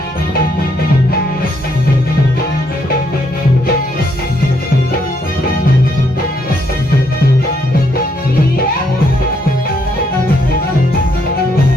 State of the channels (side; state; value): both; normal; correlation 0.73